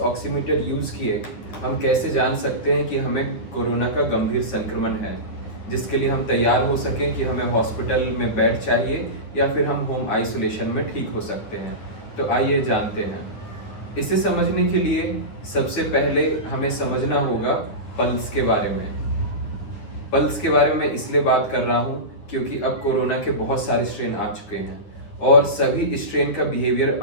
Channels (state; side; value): late; right; 9.5 ms